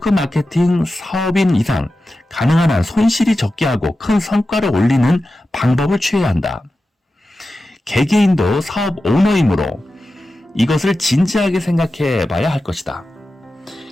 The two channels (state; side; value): normal; both; correlation 0.93